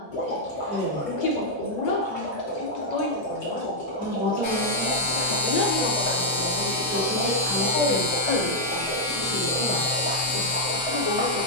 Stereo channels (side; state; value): both; normal; correlation -0.03